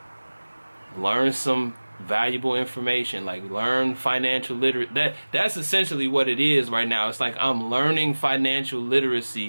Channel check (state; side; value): inverted; both; correlation -1.00